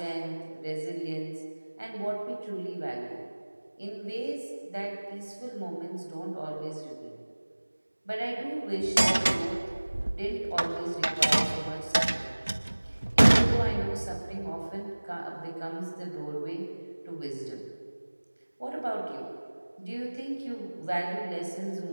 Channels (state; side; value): inverted; both; correlation -1.00